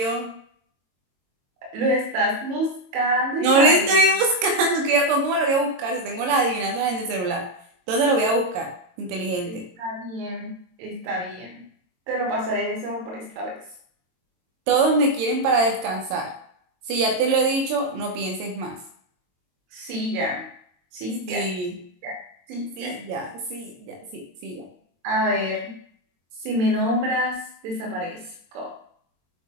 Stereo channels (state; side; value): late; left; 22 ms